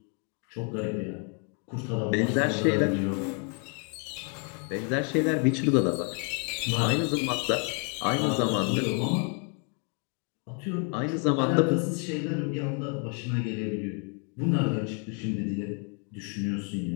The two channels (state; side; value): quieter; right; 39.0 dB